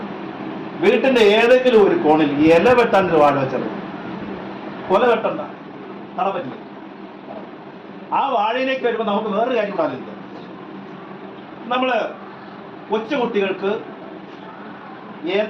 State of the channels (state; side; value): identical; both; correlation 1.00